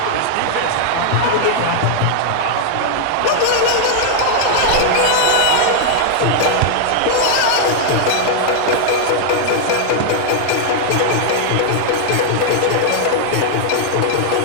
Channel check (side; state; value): both; different; correlation -0.01